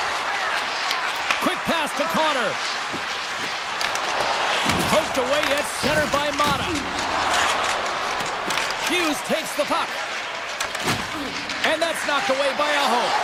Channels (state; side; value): identical; both; correlation 1.00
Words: Quick pass to Connor. Poked away at center by Mata. Hughes takes the puck. And that's knocked away by Aho.